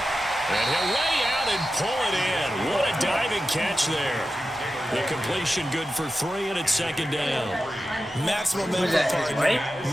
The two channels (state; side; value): normal; both; correlation 0.92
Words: And he'll lay out and pull it in. What a diving catch there. The completion good for 3, and it's 2nd down. Maximum minimal target,